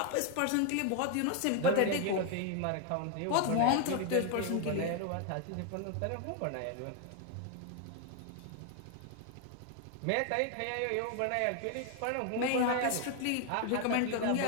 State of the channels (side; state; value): both; different; correlation 0.01